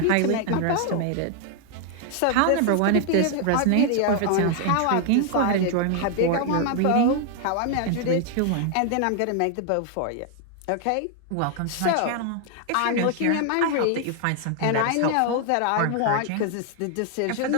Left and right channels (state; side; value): different; both; correlation 0.00